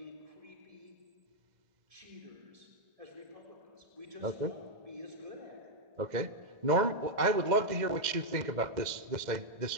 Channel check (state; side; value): late; left; 2.0 ms